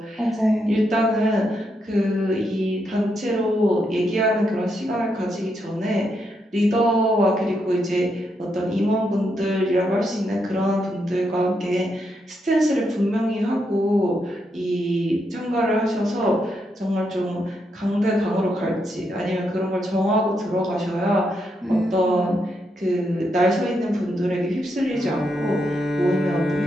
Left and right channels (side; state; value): both; normal; correlation 0.80